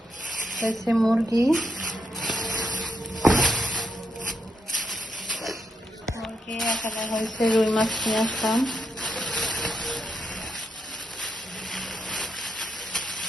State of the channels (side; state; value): both; normal; correlation 0.83